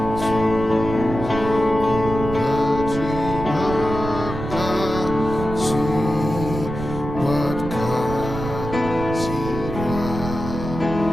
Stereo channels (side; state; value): right; noise; rumble, 7 dB below the sound